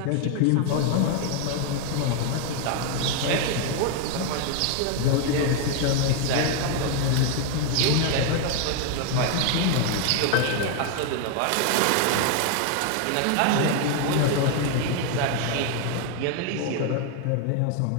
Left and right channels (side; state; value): both; different; correlation 0.00